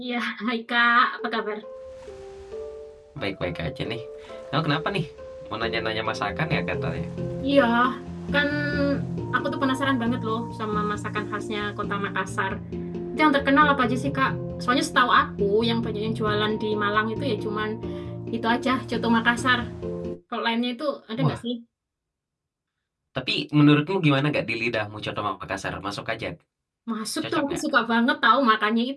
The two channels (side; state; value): both; identical; correlation 1.00